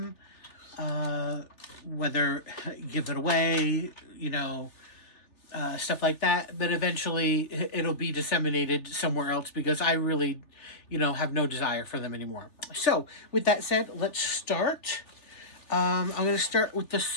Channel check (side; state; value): right; late; 3.4 ms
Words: whether give it away, you know, stuff like that. But eventually it'll be disseminated somewhere else because I really, you know, have no desire for them anymore. So with that said, let's start. I'm going to start with the